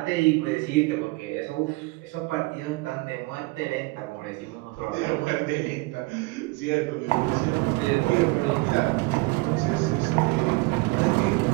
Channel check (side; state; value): left; quieter; 24.4 dB